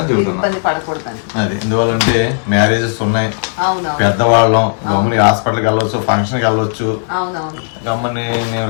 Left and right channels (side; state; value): right; silent; digital silence